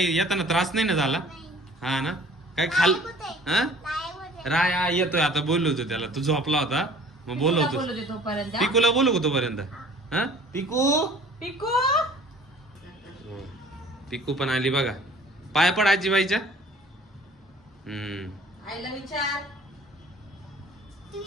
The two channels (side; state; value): both; normal; correlation 0.50